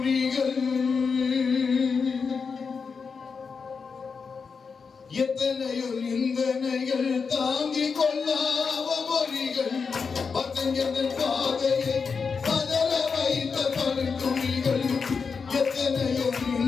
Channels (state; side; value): quieter; right; 5.4 dB